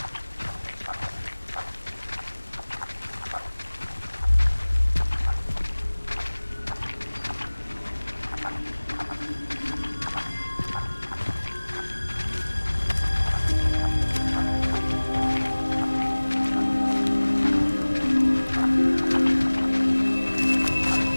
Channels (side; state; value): both; inverted; correlation -1.00